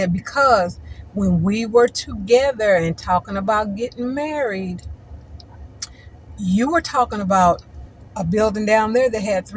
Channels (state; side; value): identical; both; correlation 1.00